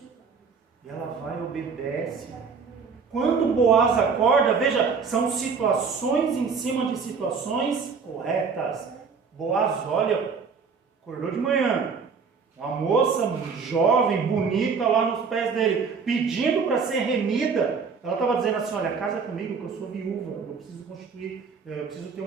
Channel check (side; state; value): left; quieter; 5.5 dB